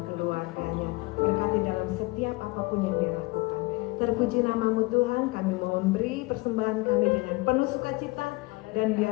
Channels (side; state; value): right; quieter; 24.0 dB